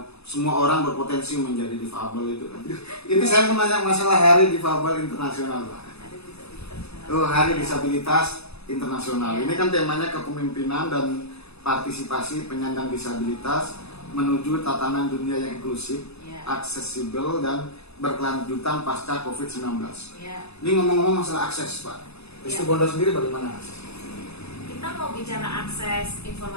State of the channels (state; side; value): late; right; 0.79 ms